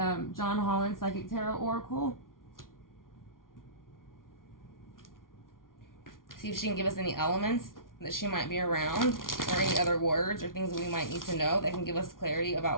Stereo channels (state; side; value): late; right; 0.90 ms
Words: John Holland Psychic Tarot Oracle. See if she can give us any elements that she might be around, or any other words or things that we might need to know that can give us clarity